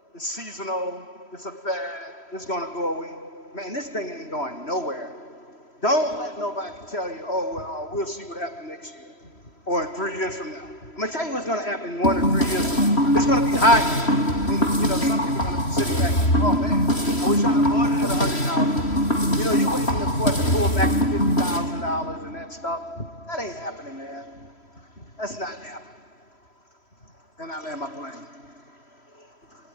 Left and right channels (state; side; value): late; right; 3.1 ms